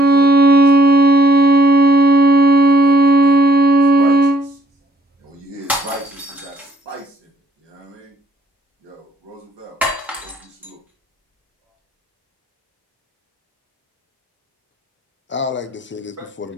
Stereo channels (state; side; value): normal; both; correlation 0.64